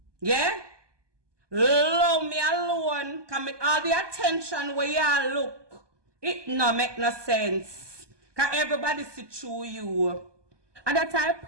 Yeah? Leave me alone. Can make all the attention where you look. It no make no sense. Can everybody see through you. And that's a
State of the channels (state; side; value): late; left; 1.2 ms